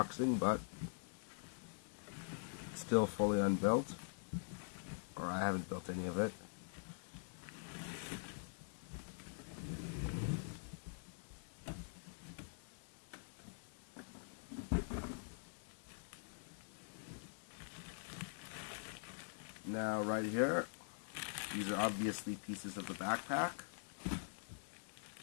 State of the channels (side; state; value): right; silent; digital silence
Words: but it's still fully unbuilt, or I haven't built any of it. Now right here, these are obviously pieces of the backpack.